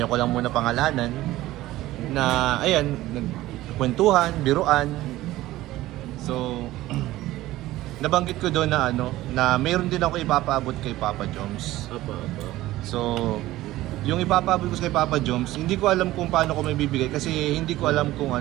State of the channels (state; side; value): quieter; left; 16.3 dB